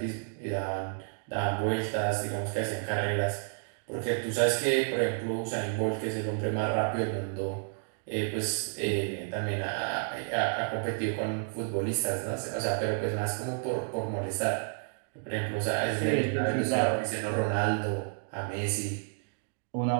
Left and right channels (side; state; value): left; silent; 57 dB below the other